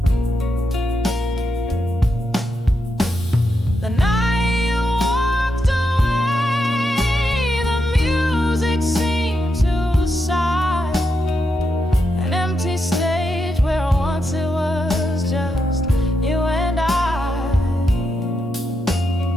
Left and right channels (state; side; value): normal; both; correlation 0.84